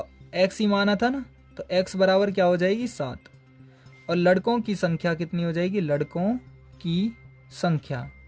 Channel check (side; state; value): both; identical; correlation 1.00